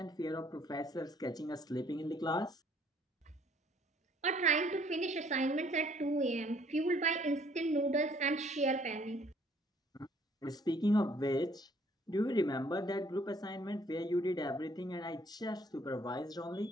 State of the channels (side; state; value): both; normal; correlation 0.62